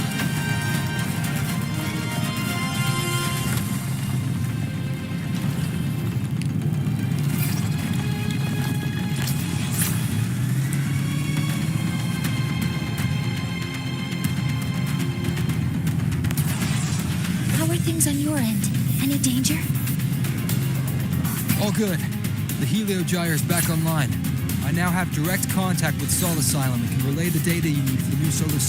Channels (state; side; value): identical; both; correlation 1.00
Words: On your end, any danger? All good. The Heliogyre's back online. I now have direct contact with Sol Asylum and can relay the data you need for the new solar